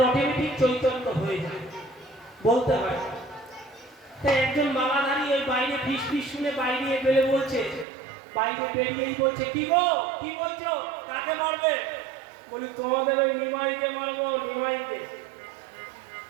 অটোমেটিক চৈতন্য হয়ে যায়, বলতে হয়। তাই একজন মালাধারী ওই বাইরে ফিস ফিস শুনে বাইরে বেড়ে বলছে, বাইরে বেরিয়েই বলছে কি গো কি বলছো, কাকে মারবে? বলি তোমাদের ওই নিমাইকে মারবো। নিমাইকে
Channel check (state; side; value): drops out; left; at 7.9 s